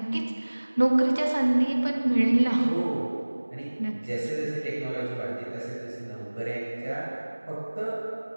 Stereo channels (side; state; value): both; inverted; correlation -1.00